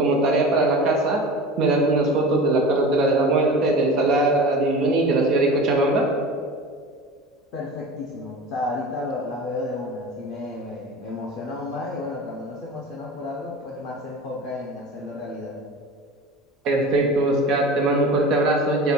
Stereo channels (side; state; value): both; normal; correlation 0.34